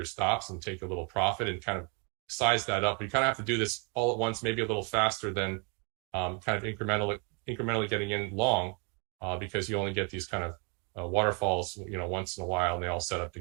stops and take a little profit and kind of size that up. You kind of have to do this all at once, maybe a little faster than kind of incrementally getting in long, because you only get these kind of waterfalls, once in a while, and they all set up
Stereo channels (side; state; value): left; quieter; 34.9 dB